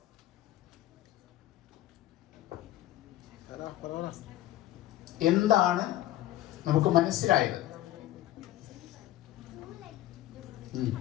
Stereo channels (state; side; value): quieter; right; 14.2 dB